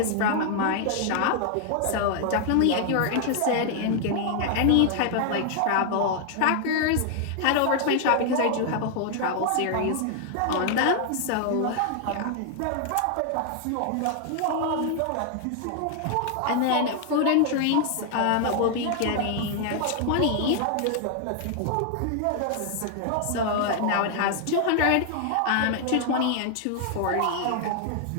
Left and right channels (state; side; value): different; both; correlation 0.00